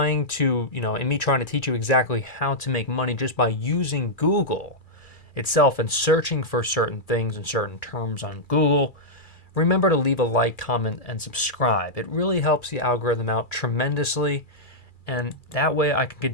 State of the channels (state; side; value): late; right; 2.4 ms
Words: to, in me trying to teach you exactly how to make money just by using Google itself and searching for certain things and certain terms on Google, remember to leave a like, comment, and subscribe. It really helps the algorithm out tremendously. And that way I can